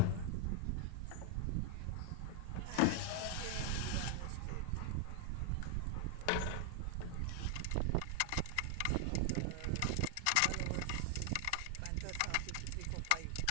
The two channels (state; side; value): different; both; correlation 0.00